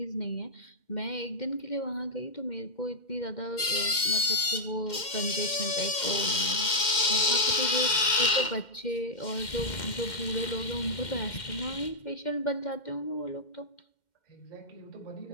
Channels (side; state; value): right; late; 2.1 ms